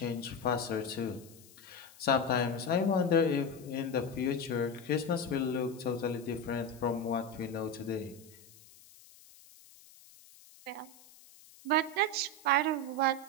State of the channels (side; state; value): left; noise; hiss, 23 dB below the sound